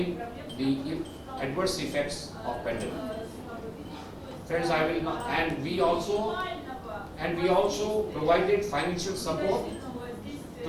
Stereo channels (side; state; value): both; identical; correlation 1.00